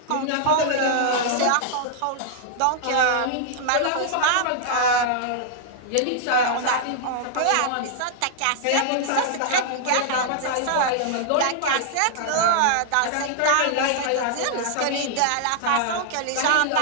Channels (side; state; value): both; different; correlation -0.01